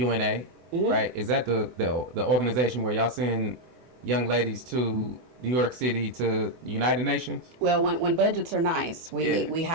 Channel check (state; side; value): late; left; 24 ms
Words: right? Is that the organization where y'all send young ladies to New York City to the United Nations? Well, when budgets are nice, we